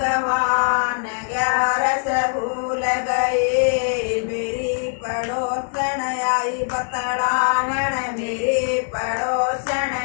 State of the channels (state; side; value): silent; right; digital silence